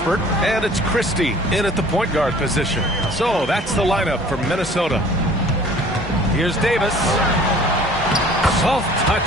And it's Christie in at the point guard position. So that's the lineup for Minnesota. Here's Davis. Soft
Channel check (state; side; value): normal; both; correlation 0.50